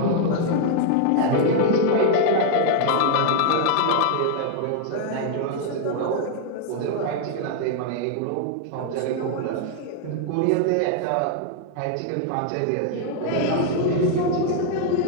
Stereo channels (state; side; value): different; both; correlation 0.00